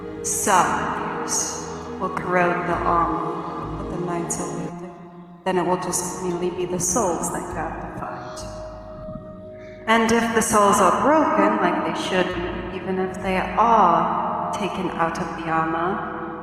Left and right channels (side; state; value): both; identical; correlation 1.00